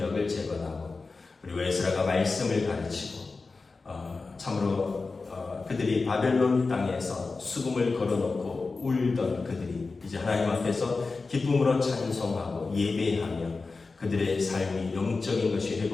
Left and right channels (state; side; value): quieter; right; 4.0 dB